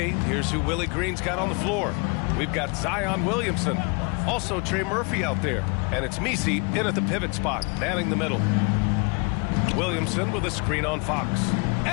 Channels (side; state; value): right; quieter; 31.4 dB